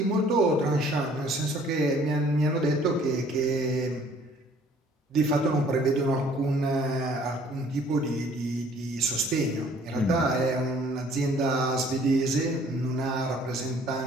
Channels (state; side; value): normal; both; correlation 0.57